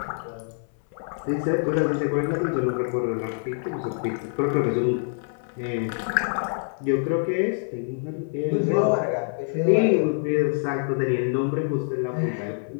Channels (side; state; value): right; silent; 61 dB below the other